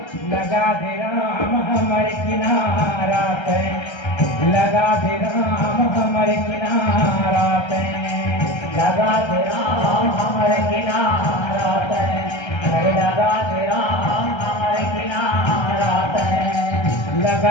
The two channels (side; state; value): right; late; 1.3 ms